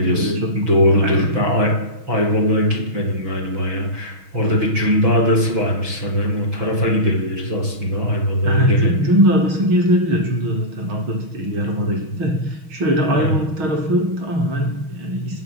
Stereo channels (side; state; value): left; late; 6.3 ms